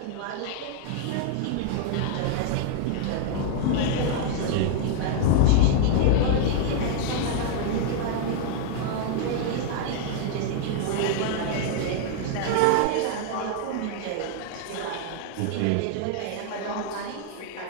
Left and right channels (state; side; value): different; both; correlation 0.00